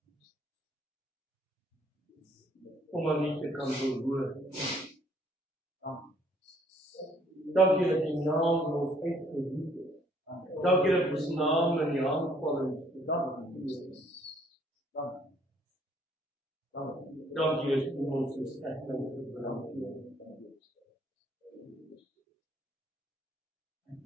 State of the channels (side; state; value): both; normal; correlation 0.63